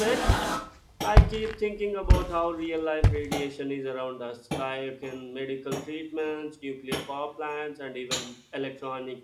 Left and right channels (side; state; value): both; identical; correlation 1.00